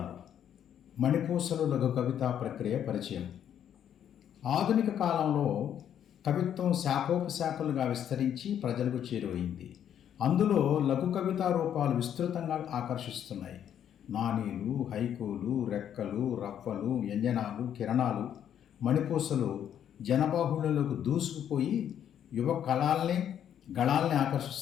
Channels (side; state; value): right; quieter; 9.6 dB